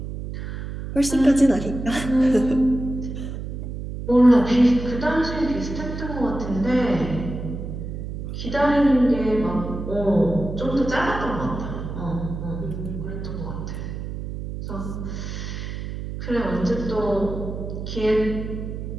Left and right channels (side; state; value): right; noise; hum, 7 dB below the sound